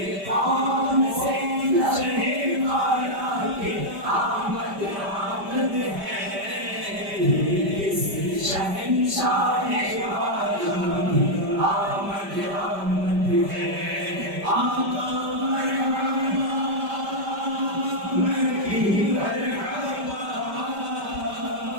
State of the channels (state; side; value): late; left; 5.1 ms